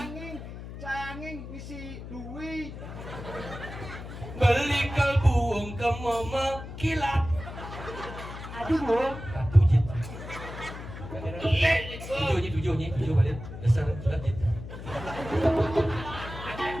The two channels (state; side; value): noise; left; hum, 11 dB below the sound